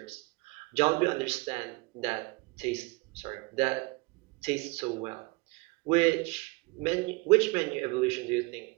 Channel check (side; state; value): left; quieter; 25.7 dB